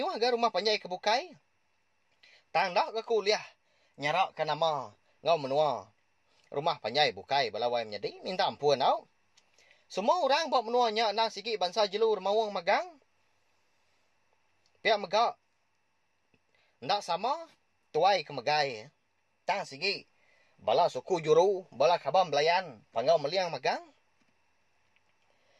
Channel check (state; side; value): identical; both; correlation 1.00